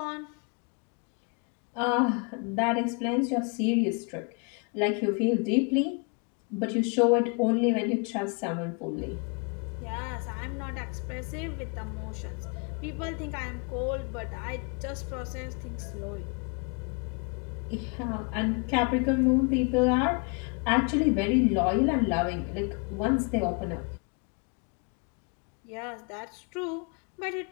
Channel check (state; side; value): quieter; right; 34.5 dB